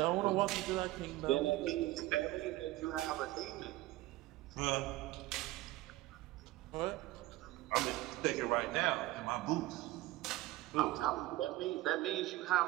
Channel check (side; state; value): left; quieter; 17.4 dB